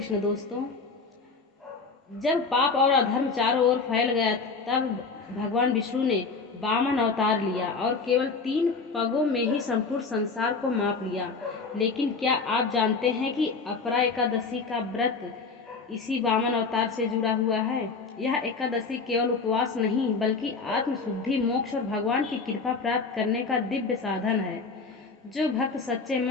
दोस्तों, जब पाप और अधर्म चारों ओर फैल गया तब भगवान विष्णु ने वामन अवतार लिया और केवल 3 पगों में ही संपूर्ण संसार को माप लिया। लेकिन क्या आप जानते हैं कि अपरा एकादशी का व्रत इसी वामन अवतार से जुड़ा हुआ है। यह एकादशी केवल उपवास नहीं बल्कि आत्मशुद्धि, मोक्ष और भगवान की कृपा प्राप्त करने का दिव्य साधन है। जो भक्त सच्चे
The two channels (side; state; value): right; quieter; 4.5 dB